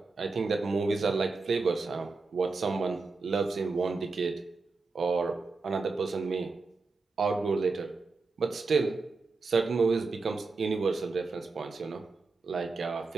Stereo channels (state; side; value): quieter; left; 4.0 dB